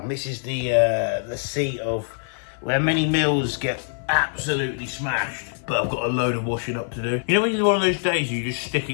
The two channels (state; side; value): silent; right; 55 dB below the other